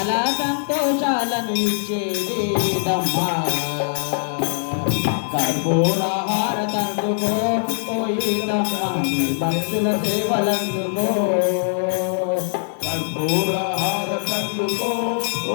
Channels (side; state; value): right; silent; digital silence